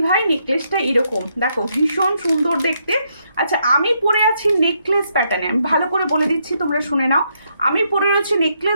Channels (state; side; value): inverted; both; correlation -0.77